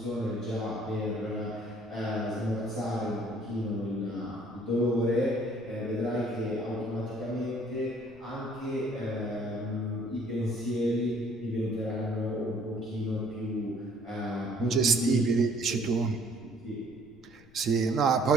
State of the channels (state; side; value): noise; left; rumble, 25 dB below the sound